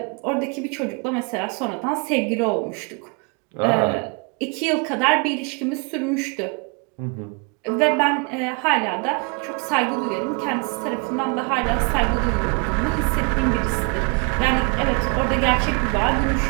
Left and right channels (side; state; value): left; quieter; 34.7 dB